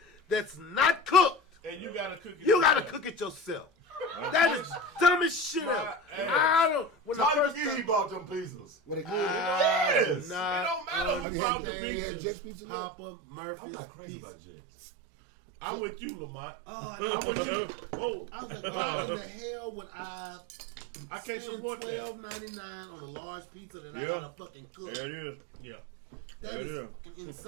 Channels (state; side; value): drops out; left; at 11.2 s